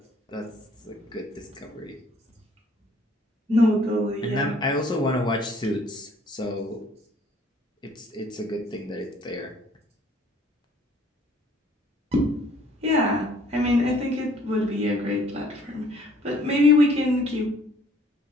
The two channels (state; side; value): normal; both; correlation 0.59